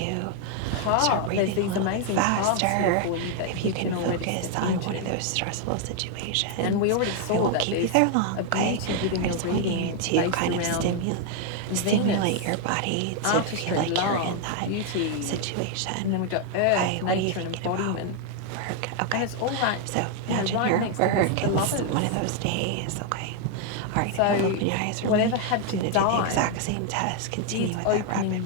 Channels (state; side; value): different; both; correlation 0.00